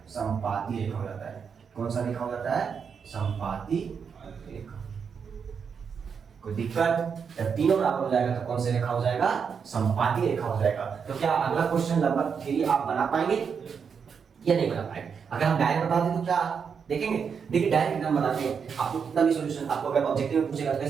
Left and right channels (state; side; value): quieter; left; 6.5 dB